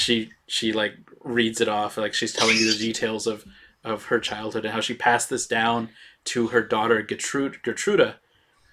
like reads it off like she's telling you the details of her childhood and how she passed this down to her daughter Gertruda,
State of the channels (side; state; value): both; identical; correlation 1.00